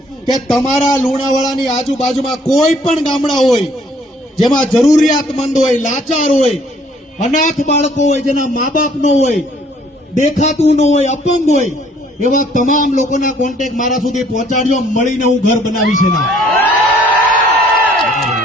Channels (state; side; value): normal; both; correlation 0.60